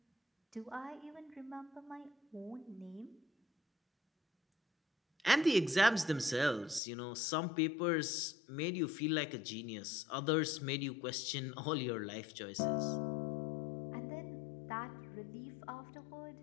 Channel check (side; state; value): right; drops out; at 6.8 s